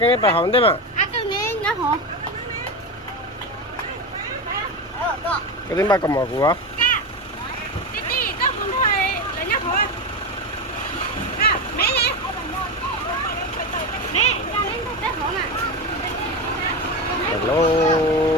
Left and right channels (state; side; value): normal; both; correlation 0.18